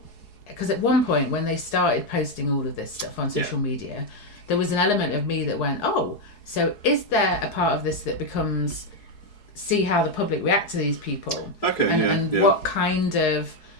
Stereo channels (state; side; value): late; right; 4.7 ms